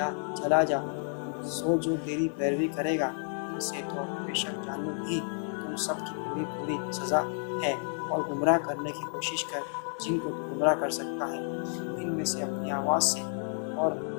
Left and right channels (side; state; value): right; silent; 57 dB below the other